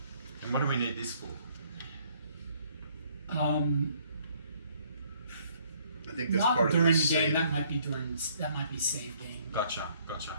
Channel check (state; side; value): inverted; both; correlation -0.63